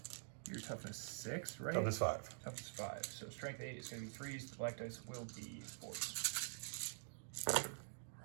your toughness 6, right? Toughness 5. Toughness 5. So strength 8 is going to be 3s. The black dice will be 4s.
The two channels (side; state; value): left; silent; digital silence